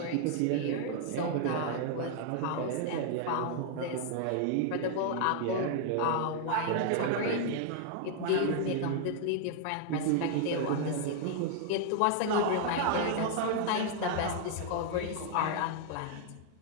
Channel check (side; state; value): both; different; correlation 0.00